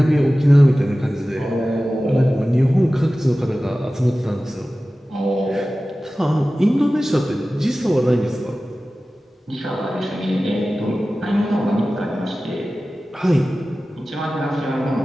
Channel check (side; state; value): both; normal; correlation 0.96